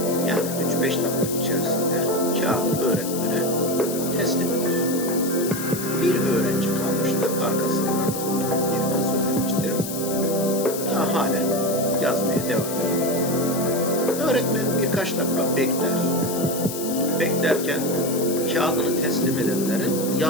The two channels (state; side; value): noise; left; hiss, 8 dB below the sound